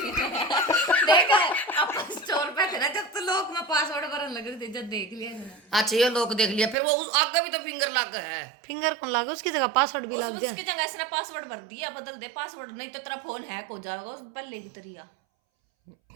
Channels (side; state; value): left; drops out; at 6.8 s